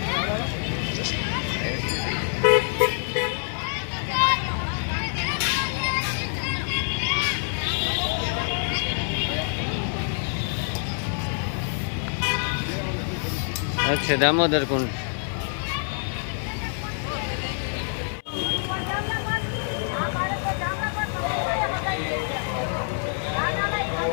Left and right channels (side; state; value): right; silent; 61 dB below the other